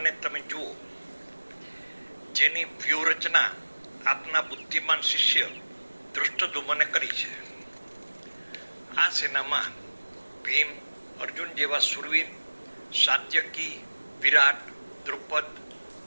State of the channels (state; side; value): inverted; both; correlation -1.00